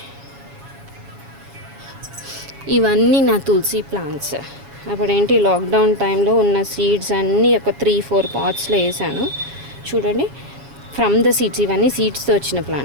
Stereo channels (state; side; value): late; left; 7.1 ms